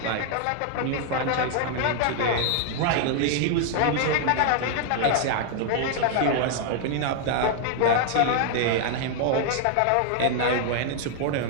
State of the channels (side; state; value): both; different; correlation 0.00